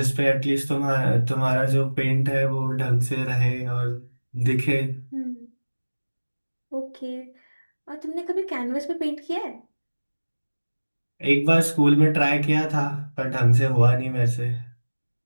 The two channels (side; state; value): both; inverted; correlation -1.00